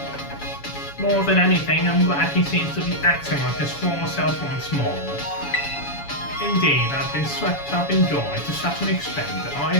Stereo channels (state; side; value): late; right; 7.1 ms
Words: More than anything, I'm glad he seems to be acting like his former self once more. Indeed, I've been swept up in joy to such an extent that I